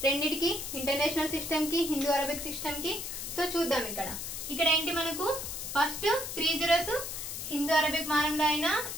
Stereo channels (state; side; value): noise; left; hiss, 6 dB below the sound